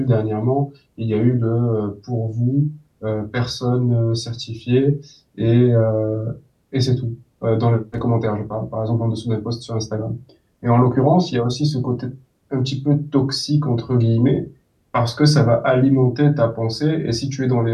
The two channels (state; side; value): identical; both; correlation 1.00